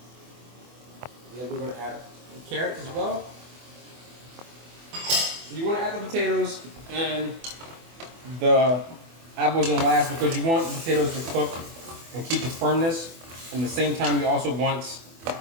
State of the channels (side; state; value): left; late; 24 ms